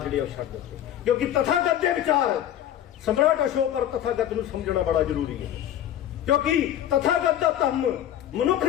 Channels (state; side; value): quieter; right; 11.1 dB